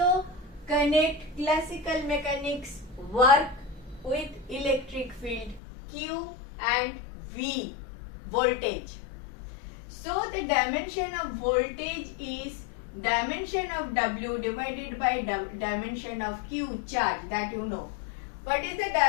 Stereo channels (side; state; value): right; drops out; at 5.6 s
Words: connect classical mechanics work with electric field Q and V, voltage. So the dimension of voltage is dimension of W divided by dimension of Q, charge, that you know. What is the